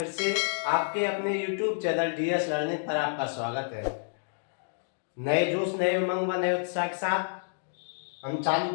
से आपके अपने YouTube चैनल DS लर्निंग पर आपका स्वागत है। नए जोश, नए उमंग व नए उत्साह के साथ हम चालू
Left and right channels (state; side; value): silent; right; digital silence